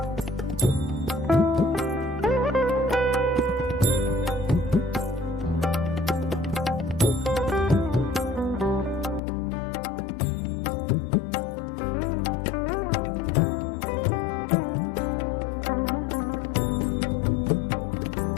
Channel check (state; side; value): drops out; right; at 9.2 s